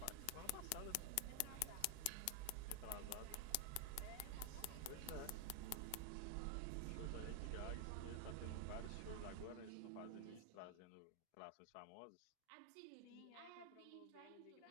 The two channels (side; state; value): both; different; correlation 0.00